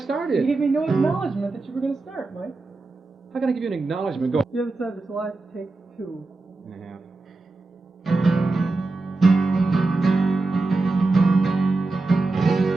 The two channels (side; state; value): left; quieter; 3.4 dB